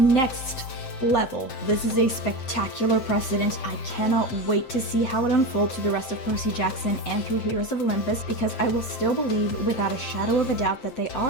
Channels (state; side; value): late; right; 7.7 ms